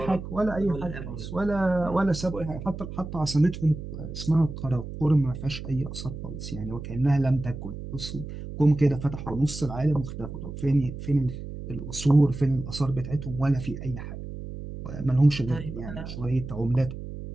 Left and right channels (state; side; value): noise; right; hum, 9 dB below the sound